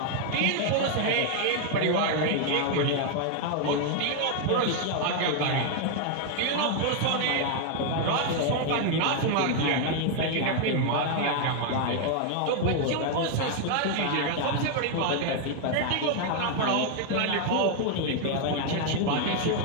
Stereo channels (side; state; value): both; different; correlation 0.00